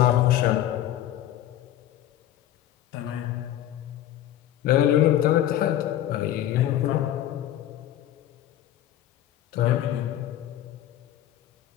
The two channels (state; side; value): quieter; right; 12.5 dB